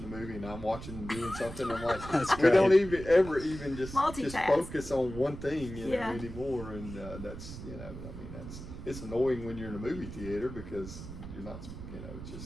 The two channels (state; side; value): noise; right; rumble, 11 dB below the sound